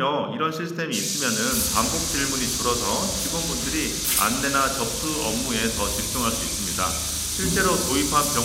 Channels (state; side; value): identical; both; correlation 1.00